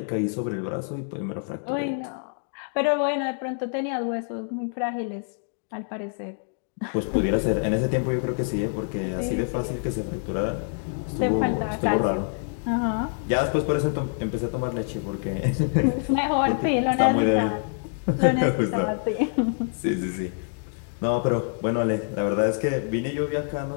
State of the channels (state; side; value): silent; right; digital silence